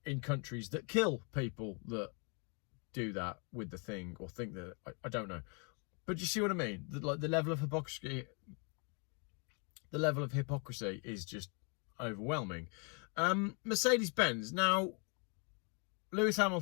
in countries that kill people that do that with the thing, or think that, I don't know. But you see what I mean? The level of hypocrisy is just overwhelming. Mercedes-Benz. Now, Lewis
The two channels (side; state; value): right; quieter; 36.7 dB